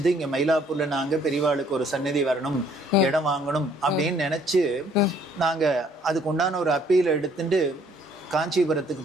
இங்க மயிலாப்பூர்ல நாங்க பெரியவாளுக்கு ஒரு சந்நிதி வரணும், இடம் வாங்கணும் அப்படின்னு நினைச்சு நாங்க அதுக்கு உண்டான ஒரு அப்பீல் எடுத்துட்டு காஞ்சிபுரத்துக்கு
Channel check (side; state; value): both; normal; correlation 0.62